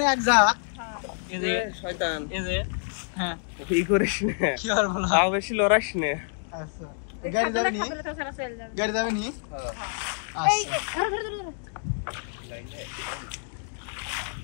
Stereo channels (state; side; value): silent; right; digital silence